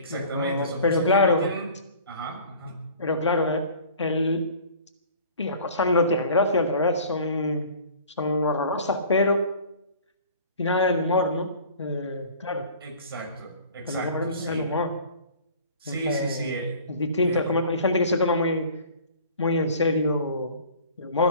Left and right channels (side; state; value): both; inverted; correlation -0.46